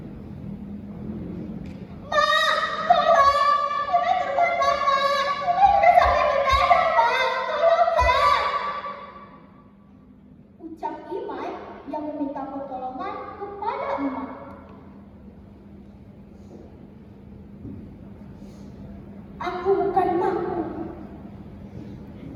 Yang meminta pertolongan kepada Emak. Aku bukan makmu,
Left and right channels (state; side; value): identical; both; correlation 1.00